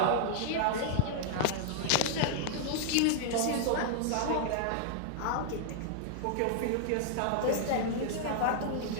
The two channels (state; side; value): different; both; correlation -0.01